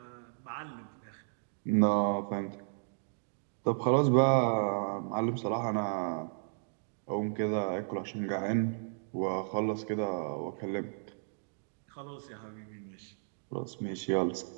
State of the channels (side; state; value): left; silent; digital silence